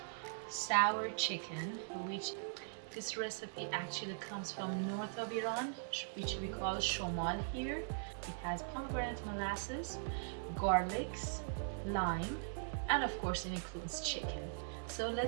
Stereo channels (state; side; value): silent; left; 51 dB below the other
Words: sour chicken, which this recipe actually comes from north of Iran, which we call shomal here. It has pomegranate molasses, garlics, lime, and of course it includes chicken. So